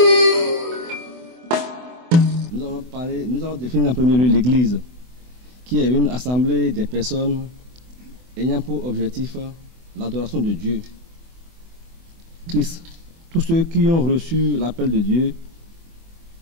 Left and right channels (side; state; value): left; late; 24 ms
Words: Nous allons définir en premier lieu l'Église, qui est une assemblée des personnes ayant pour objectif l'adoration de Dieu, Christ. Tous ceux qui ont reçu l'appel de Dieu,